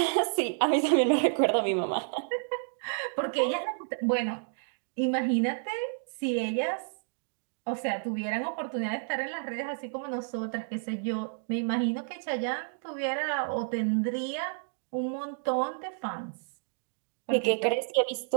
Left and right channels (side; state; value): left; silent; digital silence